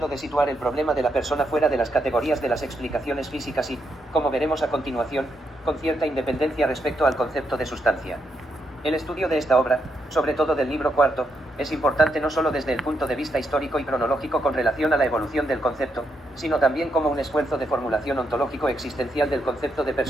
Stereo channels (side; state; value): both; normal; correlation 0.80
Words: de situar el problema de la persona fuera de las categorías de las explicaciones físicas y, como veremos a continuación, con cierta independencia respecto al concepto de sustancia. El estudio de esta obra, sobre todo del libro cuarto, es importante no solo desde el punto de vista histórico y cronológico con relación a la evolución del concepto, sino también como un esfuerzo de formulación ontológico existencial del concepto de